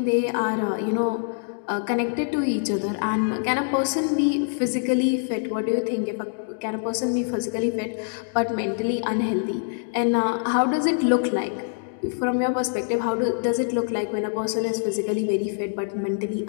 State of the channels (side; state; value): right; silent; 62 dB below the other